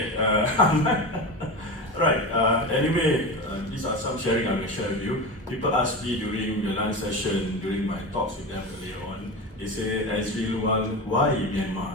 Right. Anyway, these are some sharing I will share with you. People ask me during the lunch session, during my talks with them earlier on, they say, Azri Lual, why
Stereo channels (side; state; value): both; normal; correlation 0.24